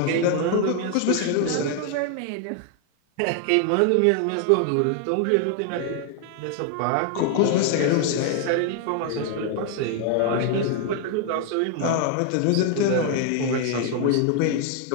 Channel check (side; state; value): both; different; correlation 0.00